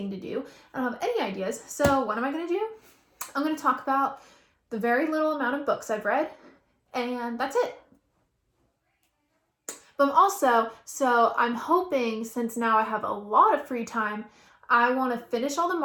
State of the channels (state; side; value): identical; both; correlation 1.00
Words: to do. I don't have any ideas. So what am I gonna do? I'm gonna talk about the very little amount of books I've read, and that's it. But I'm hoping since now I have a lot of free time, I want to finish all the